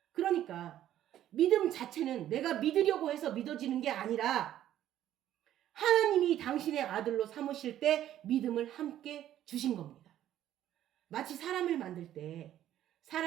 그러니까 믿음 자체는 내가 믿으려고 해서 믿어지는 게 아니라 하나님이 당신의 아들로 삼으실 때 믿음을 함께 주신 겁니다. 마치 사람을 만들 때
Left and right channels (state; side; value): quieter; left; 12.0 dB